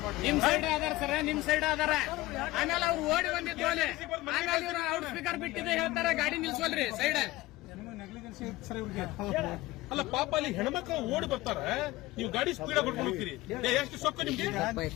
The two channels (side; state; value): right; quieter; 18.4 dB